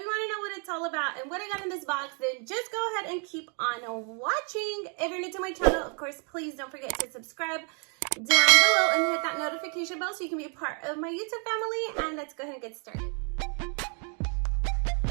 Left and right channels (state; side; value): quieter; left; 38.4 dB